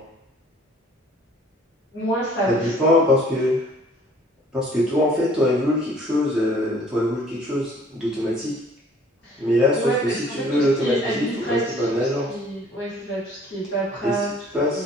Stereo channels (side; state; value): both; normal; correlation 0.55